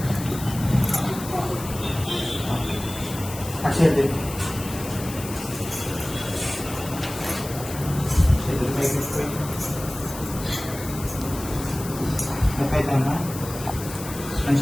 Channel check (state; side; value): noise; left; hiss, 12 dB below the sound